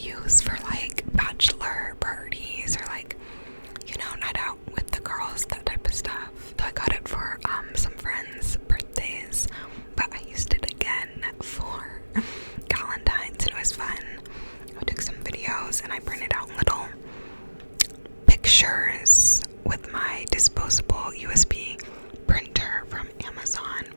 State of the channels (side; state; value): both; inverted; correlation -1.00